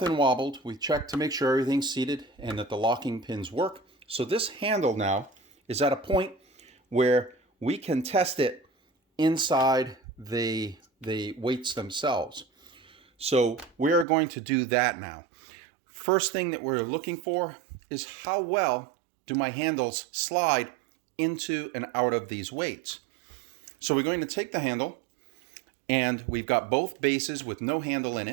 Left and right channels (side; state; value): left; drops out; at 14.1 s